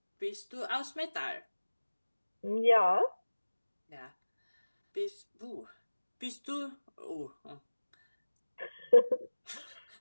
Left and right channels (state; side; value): inverted; both; correlation -1.00